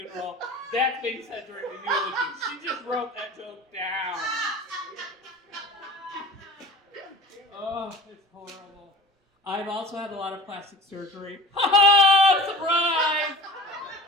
that's being said during the eulogy. She just wrote that joke down. Oh, it's horrible. I've also had a lot of plastic surgery. Ha! Surprise!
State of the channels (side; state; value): both; normal; correlation 0.39